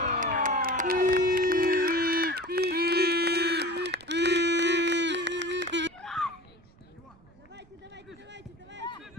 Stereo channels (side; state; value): right; noise; rumble, 27 dB below the sound